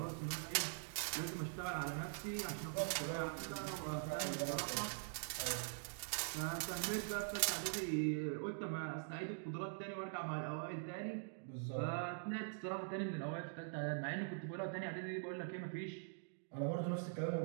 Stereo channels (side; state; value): left; silent; digital silence